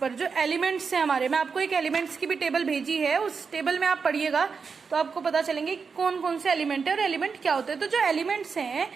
जो एलिमेंट्स हैं हमारे, मैं आपको एक एलिमेंट्स की भी टेबल भेजी है, उस टेबल में आप पढ़िएगा तो आपको पता चलेंगे कौन कौन से एलिमेंट है और एलिमेंट क्या होते हैं। तो जो एलिमेंट्स हैं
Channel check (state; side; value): quieter; left; 5.4 dB